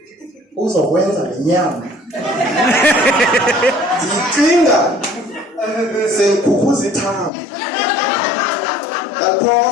uzokwenza le nyama ndicinga sengikhukhuza ithambo.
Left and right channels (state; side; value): drops out; right; at 7.3 s